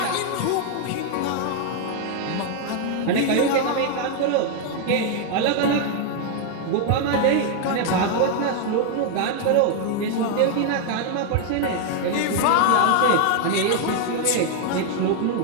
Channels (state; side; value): different; both; correlation 0.00